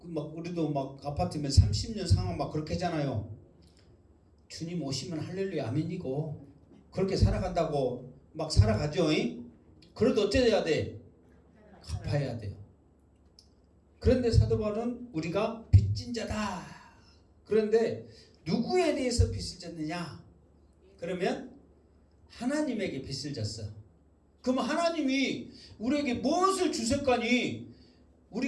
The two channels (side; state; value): both; identical; correlation 1.00